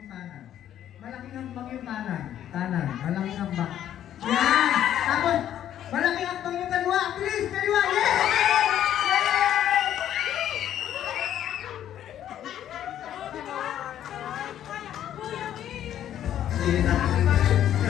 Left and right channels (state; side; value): quieter; right; 11.0 dB